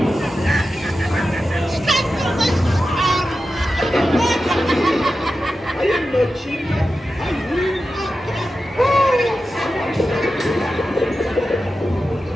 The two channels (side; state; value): both; normal; correlation 0.92